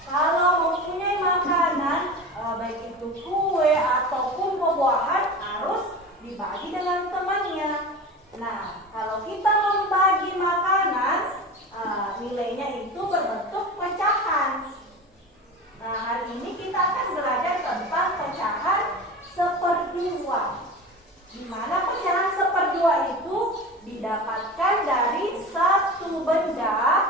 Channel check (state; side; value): normal; both; correlation 0.31